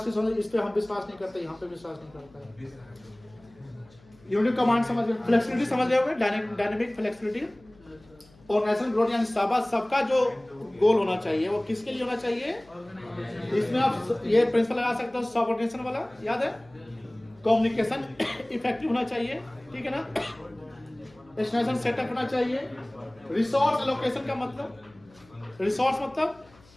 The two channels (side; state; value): left; noise; hum, 28 dB below the sound